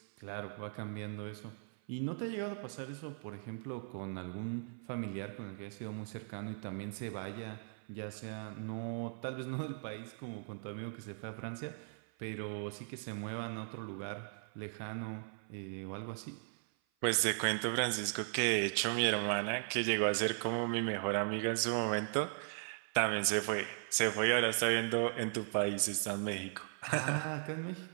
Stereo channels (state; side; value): silent; left; 52 dB below the other